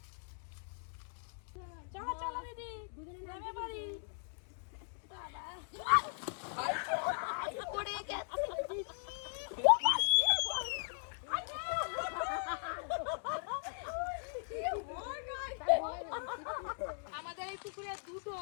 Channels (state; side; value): silent; right; digital silence